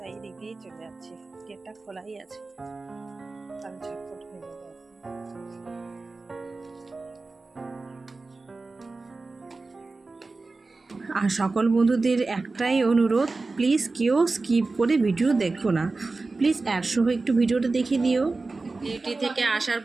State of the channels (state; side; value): quieter; left; 3.6 dB